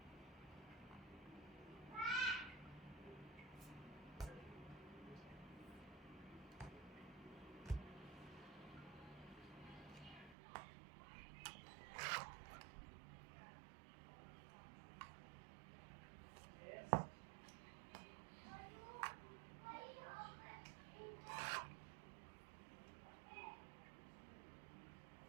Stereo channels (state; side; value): drops out; left; at 10.4 s